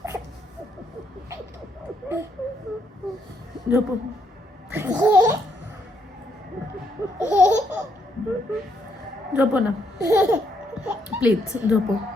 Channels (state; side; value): normal; both; correlation 0.74